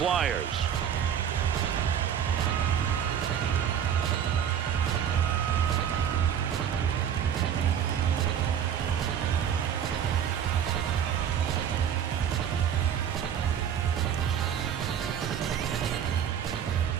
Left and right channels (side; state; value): left; quieter; 8.8 dB